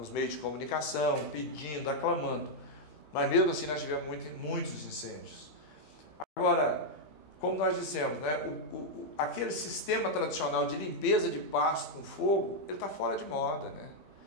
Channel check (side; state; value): right; late; 15 ms